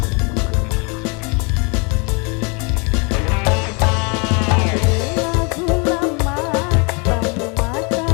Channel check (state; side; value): quieter; right; 32.3 dB